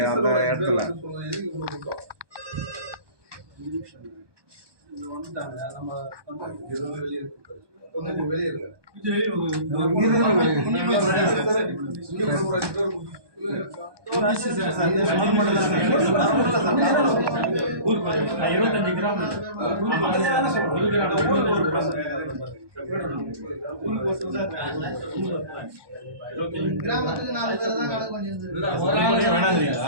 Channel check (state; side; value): late; left; 1.2 ms